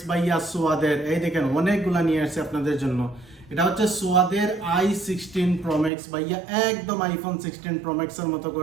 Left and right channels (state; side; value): drops out; left; at 5.9 s